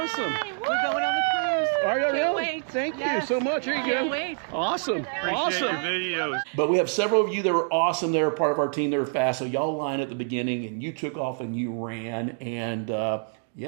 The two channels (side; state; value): left; silent; 61 dB below the other